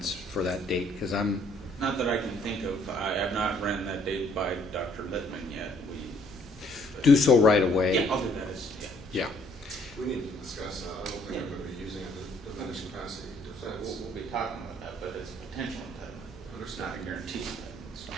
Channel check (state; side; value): normal; both; correlation 0.63